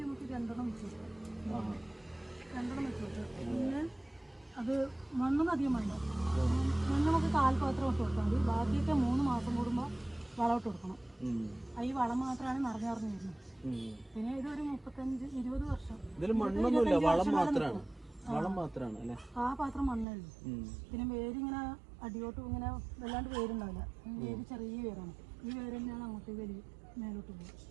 നമുക്ക് 2 വെച്ചു. 2 വെച്ചു. പിന്നെ അത് മണ്ണൊന്നും അധികം വേണ്ട. കാൽപാത്രം ഇട്ട് കൊടുത്താൽ മതി. ബാക്കിയൊക്കെ 3 മാസം കൂടുമ്പോൾ വളം ഇട്ട് കൊടുക്കണം. ഈ വളം മാത്രമാണ് നിറഞ്ഞു വരുന്നത്. പിന്നെ ഇതൊരു 35-20 വർഷം. ഇതിൽ മണ്ണൊന്നുമില്ല, വളം മാത്രമാണ്. വളം മാത്രമാണ് അല്ലേ? ആ പാത്രം മണ്ണേ ഉള്ളൂ. പിന്നെ വേരിങ്ങനെ അടിയോട്ട് ഇങ്ങനെ വല്ലാണ്ട് വേരുണ്ടാവില്ല. വേര് ചെറിയ വേരാണ്. ഈ വേര് തന്നെയാണ് അങ്ങോട്ട് മേലോട്ട് പോകും.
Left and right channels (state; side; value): drops out; left; at 20.1 s